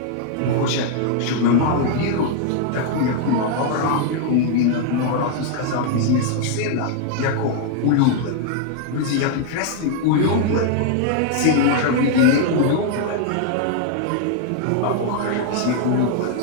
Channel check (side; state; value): both; different; correlation 0.00